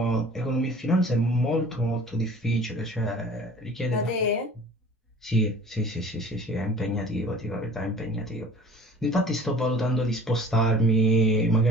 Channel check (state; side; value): normal; both; correlation 0.46